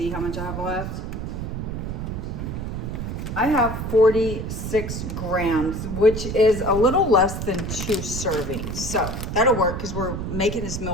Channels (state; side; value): noise; right; rumble, 4 dB below the sound